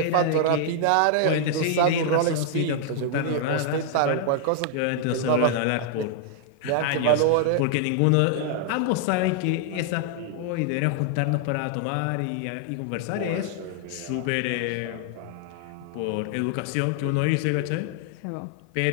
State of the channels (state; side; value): different; both; correlation 0.00